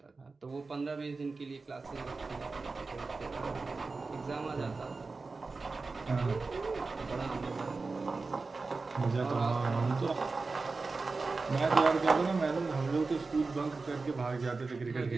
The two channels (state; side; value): quieter; left; 4.0 dB